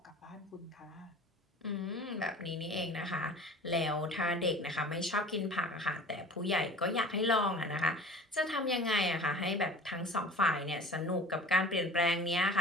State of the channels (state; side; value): normal; both; correlation 0.42